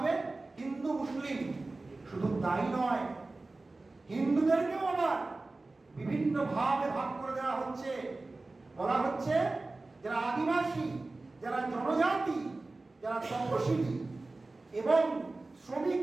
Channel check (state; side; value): quieter; left; 3.2 dB